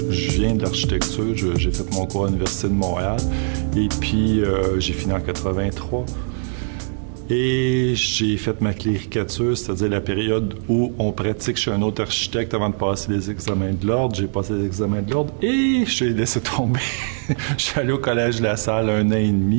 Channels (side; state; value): left; silent; digital silence